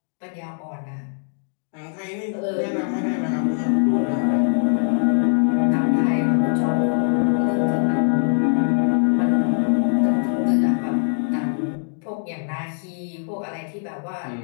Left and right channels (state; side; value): silent; right; digital silence